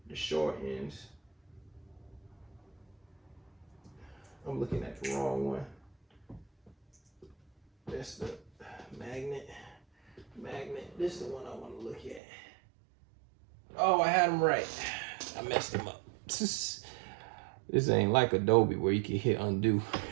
the short ends, I'm looking at the wrong one. That's the magnet. This is the one I want to look at. Oh, I had them right. I messed them up. This ain't like Adobe where you can hit undo.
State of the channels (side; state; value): left; drops out; at 12.2 s